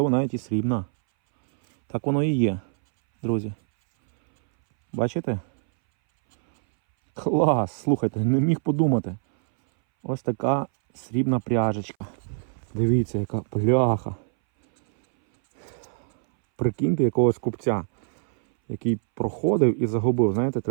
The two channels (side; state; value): left; silent; 61 dB below the other